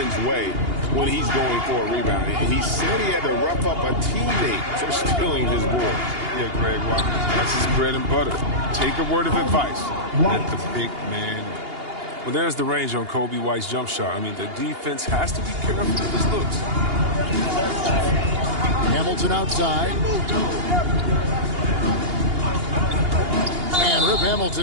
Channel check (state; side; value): late; left; 2.8 ms